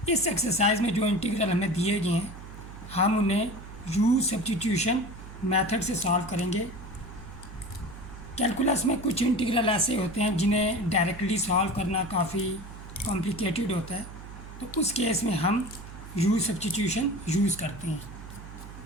इस एक्सरसाइज में जो इंटीग्रल हमें दिए गए हैं हम उन्हें यू सब्स्टिट्यूशन मेथड से सॉल्व करेंगे। कैलकुलस में कुछ इंटीग्रल ऐसे होते हैं जिन्हें डायरेक्टली सॉल्व करना काफ़ी कॉम्प्लिकेटेड होता है, तो उस केस में हम यू सब्स्टिट्यूशन यूज़ करते हैं।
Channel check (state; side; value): noise; right; hum, 14 dB below the sound